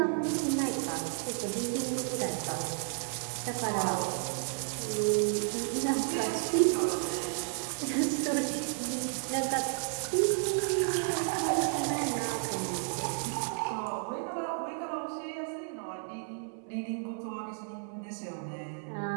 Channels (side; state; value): left; silent; 56 dB below the other